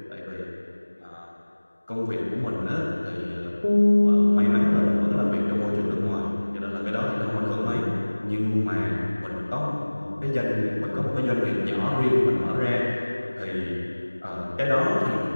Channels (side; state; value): both; inverted; correlation -1.00